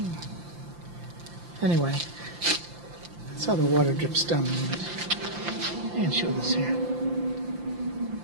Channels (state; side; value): late; left; 5.8 ms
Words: Anyway, that's how the water drips down the unit. And show this here.